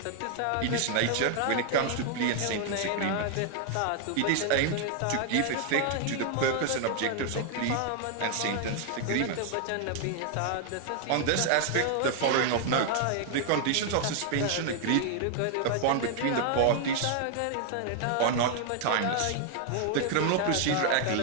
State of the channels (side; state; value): both; different; correlation 0.00